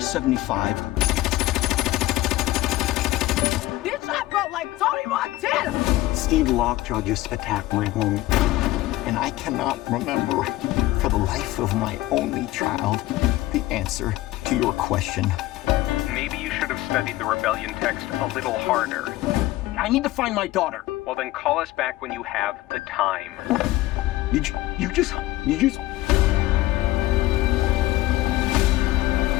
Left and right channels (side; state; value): right; quieter; 17.2 dB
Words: 75. Bitch, I felt like Tony Montana! Steve Lockjaw just attacked my home. And I cannot remember, for the life of my only child, the answer to your question. Maybe you should have studied the rebellion text a little harder. I need to find my daughter. Well, then call us back when you have the time. You just...